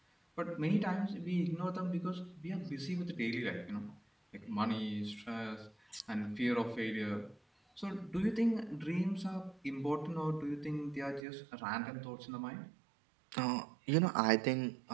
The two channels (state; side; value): drops out; left; at 11.2 s